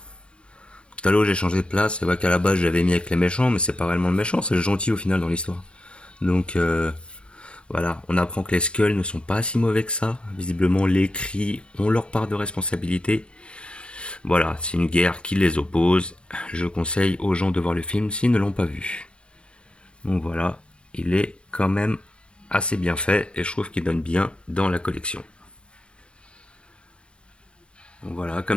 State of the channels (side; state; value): right; late; 0.056 ms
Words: Talos, j'ai changé de place. C'est vrai qu'à la base, j'avais mis avec les méchants, mais c'est pas réellement le méchant, c'est le gentil au final dans l'histoire. Donc, voilà, on apprend que les Skulls ne sont pas si mauvais que ça. Visiblement, les Cris ont leur part de responsabilité. Voilà, c'est une guerre qui les oppose. Je conseille aux gens de voir le film s'ils ne l'ont pas vu. Donc voilà, il est quand même assez bien fait et je trouve qu'il donne bien dans la collection. Donc voilà,